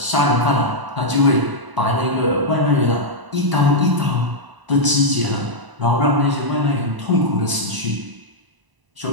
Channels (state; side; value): late; left; 1.0 ms